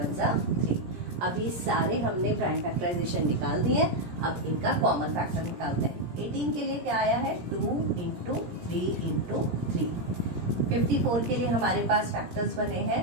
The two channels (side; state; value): left; late; 17 ms